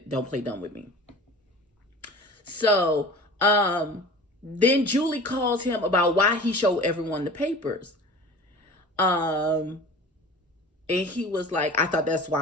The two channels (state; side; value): normal; both; correlation 0.39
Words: Don't play dumb with me. So then Julie calls him about why he showed everyone the papers. And he was like, I thought that's